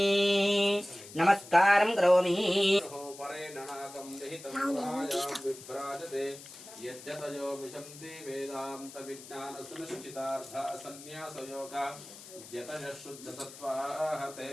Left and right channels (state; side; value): noise; left; hiss, 16 dB below the sound